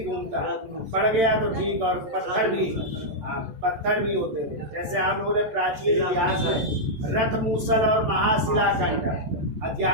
घूमता है, पड़ गया तो ठीक। और पत्थर भी, पत्थर भी होते थे। जैसे आप लोगों ने प्राचीन इतिहास में रथ मूसल और महाशिलाखंड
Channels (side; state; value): left; late; 14 ms